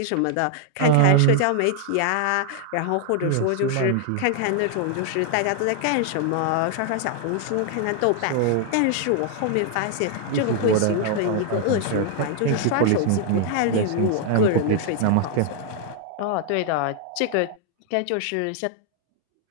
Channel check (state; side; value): different; both; correlation 0.00